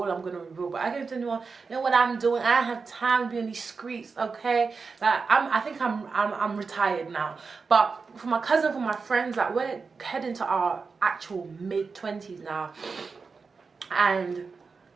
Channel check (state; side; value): quieter; left; 4.8 dB